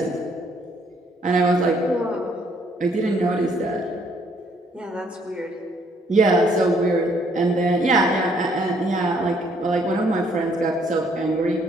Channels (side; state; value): both; normal; correlation 0.66